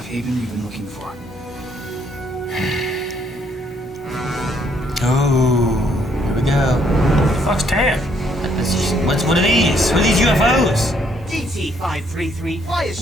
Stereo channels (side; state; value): both; normal; correlation 0.69